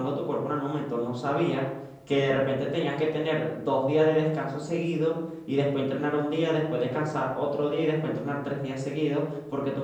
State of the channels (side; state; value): both; identical; correlation 1.00